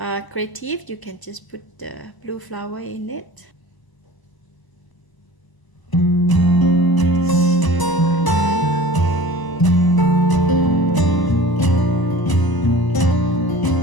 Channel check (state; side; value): late; right; 1.0 ms